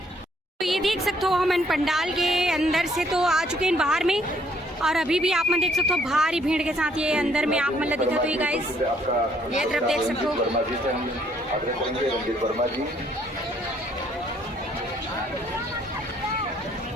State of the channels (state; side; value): normal; both; correlation 0.65